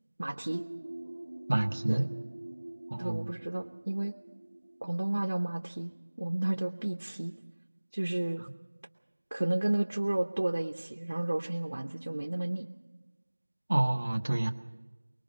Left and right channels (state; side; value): inverted; both; correlation -1.00